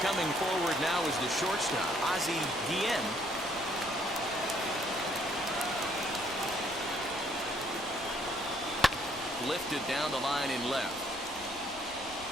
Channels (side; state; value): left; noise; rumble, 20 dB below the sound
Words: coming forward now is the shortstop, Ozzie Guillen. Lifted down the line in left.